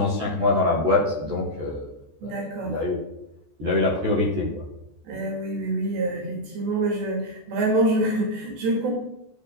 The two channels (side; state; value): left; late; 14 ms